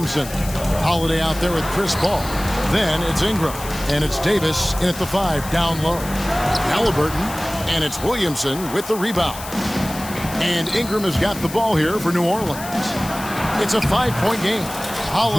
Holiday out there with Chris Paul. Then it's Ingram, and it's Davis in at the 5 down low. Halliburton, and it's Williamson with the rebound. And Ingram has got the ball here for New Orleans. It's a 5-point game.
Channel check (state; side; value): noise; left; hiss, 12 dB below the sound